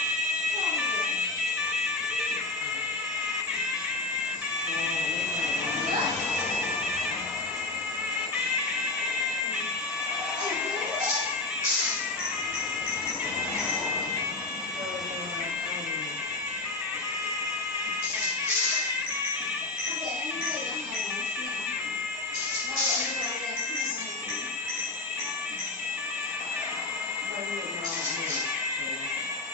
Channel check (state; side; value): quieter; right; 3.1 dB